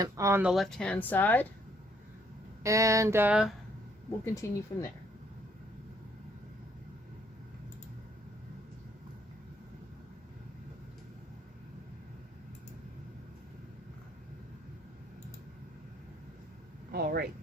on the left-hand side, and we'll continue from there. All right,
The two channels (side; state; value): both; normal; correlation 0.66